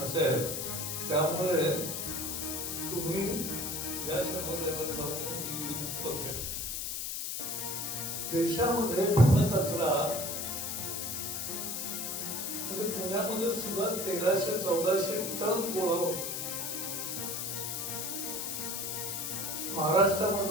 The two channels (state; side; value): noise; left; hiss, 3 dB below the sound